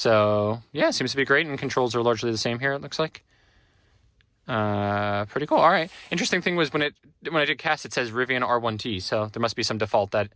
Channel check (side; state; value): both; identical; correlation 1.00